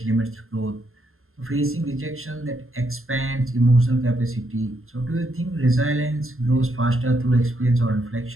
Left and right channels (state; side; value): late; left; 0.61 ms